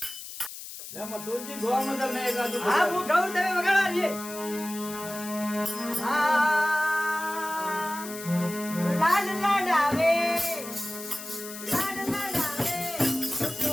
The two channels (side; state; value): left; noise; hiss, 11 dB below the sound